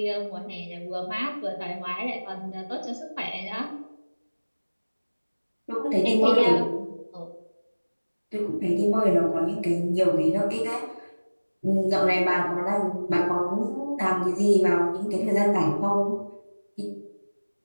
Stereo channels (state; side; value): inverted; both; correlation -1.00